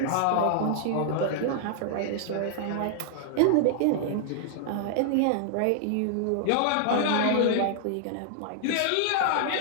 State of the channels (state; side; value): different; both; correlation -0.01